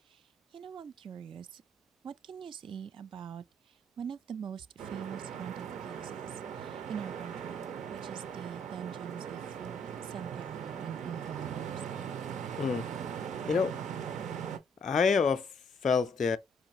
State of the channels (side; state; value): both; normal; correlation 0.66